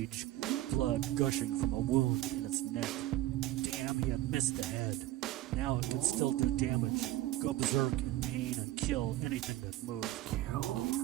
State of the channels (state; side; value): quieter; left; 15.4 dB